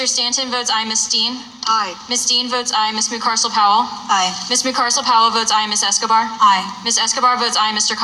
Stanton votes aye. Ms. Dean. Aye. Ms. Dean votes aye. Ms. McCarcel Powell. Aye. Ms. McCarcel Powell votes aye. Ms. Escobar. Aye. Ms. Escobar votes aye. Mr.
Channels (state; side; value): identical; both; correlation 1.00